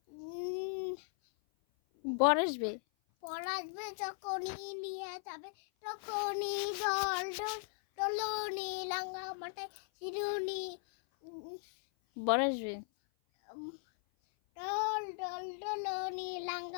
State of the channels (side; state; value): right; silent; 53 dB below the other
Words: বর আসবে বর আসবে যখনই নিয়ে যাবে তখনই দল দল দোলনি লাঙ্গা মাথায় চিরুনি বর আসবে দল দল দোলনি